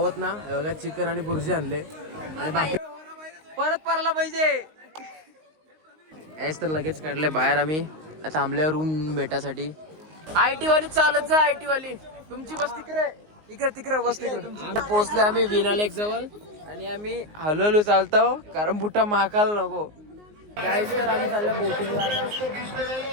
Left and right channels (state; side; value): late; left; 19 ms